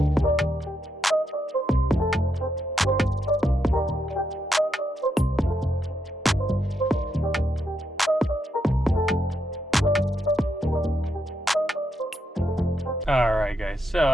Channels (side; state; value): both; normal; correlation 0.81